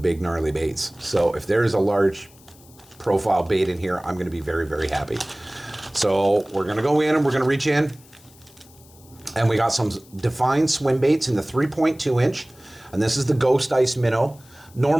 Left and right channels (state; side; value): noise; left; hiss, 26 dB below the sound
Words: gnarly baits. So if there is a large profile bait in here, I'm going to be very, very happy. So we're going to go in and we're going to reach in. And we got some defined swim baits in the 3.2 inch. And this is the Ghost Ice Minnow.